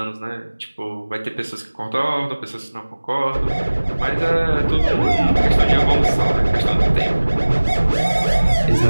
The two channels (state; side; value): inverted; both; correlation -1.00